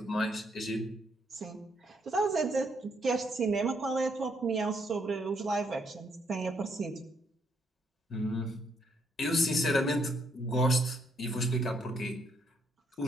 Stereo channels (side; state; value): both; normal; correlation 0.72